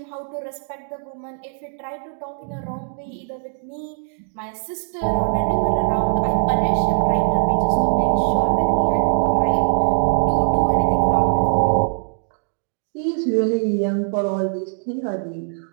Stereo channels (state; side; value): silent; left; digital silence